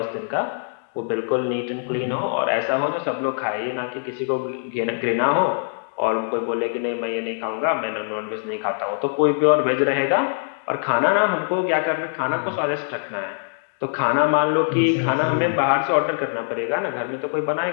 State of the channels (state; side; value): silent; right; digital silence